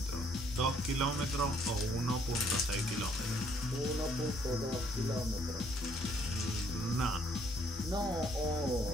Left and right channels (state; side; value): normal; both; correlation 0.66